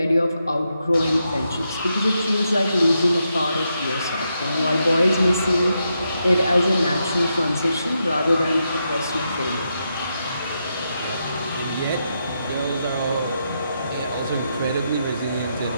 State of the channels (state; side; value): inverted; both; correlation -0.83